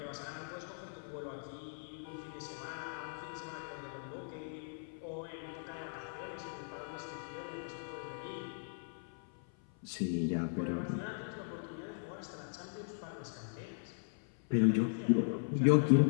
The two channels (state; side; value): silent; right; 52 dB below the other